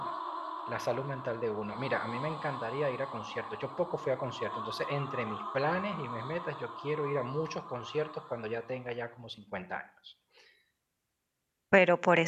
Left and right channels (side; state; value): both; identical; correlation 1.00